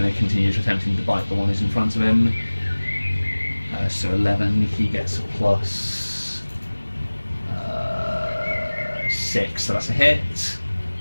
to continue attempting to bite the one who's in front of him. So 11. He gets a plus 6, so that's a hit.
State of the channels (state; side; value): inverted; both; correlation -1.00